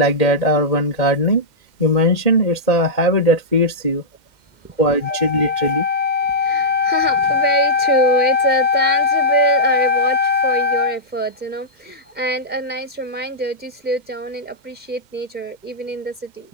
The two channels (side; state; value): left; late; 2.1 ms